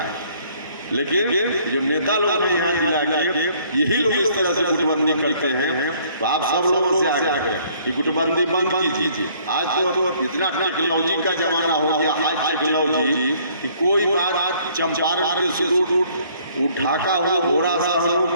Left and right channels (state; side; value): inverted; both; correlation -0.61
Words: लेकिन जो नेता लोग हैं यहाँ जिला के यही लोग इस तरह से गुटबंदी करते हैं। तो आप सब लोगों से आग्रह कि गुटबंदी बंद कीजिए। आज तो इतना टेक्नोलॉजी का जमाना हो गया, हाई टेक्नोलॉजी, कि कोई बात चंपारण के शुरू ढाका हो, घोड़ा शहर हो,